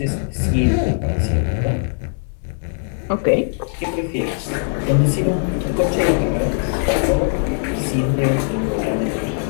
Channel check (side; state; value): right; silent; 64 dB below the other